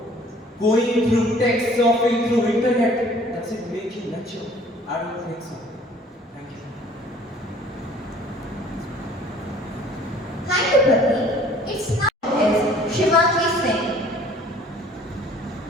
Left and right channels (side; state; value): both; normal; correlation 0.54